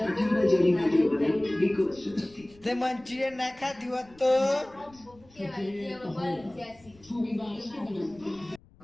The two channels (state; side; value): noise; left; rumble, 27 dB below the sound